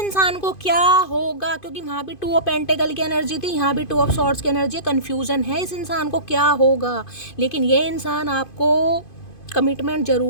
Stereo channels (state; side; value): late; right; 2.5 ms